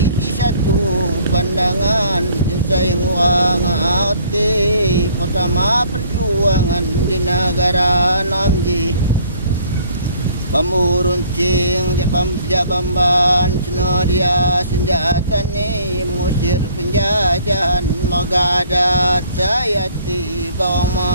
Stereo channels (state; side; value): inverted; both; correlation -0.58